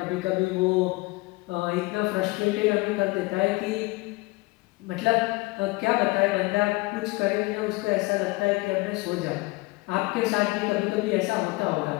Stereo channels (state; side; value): quieter; right; 23.3 dB